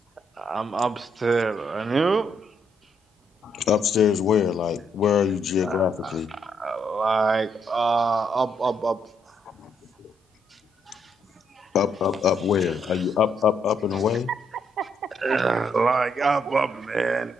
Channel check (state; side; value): normal; both; correlation 0.75